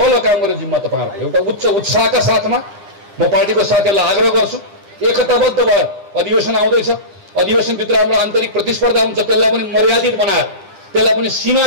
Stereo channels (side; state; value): left; late; 10 ms